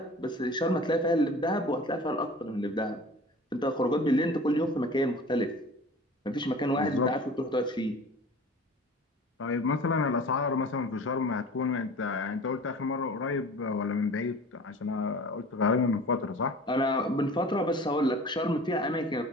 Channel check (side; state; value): both; normal; correlation 0.42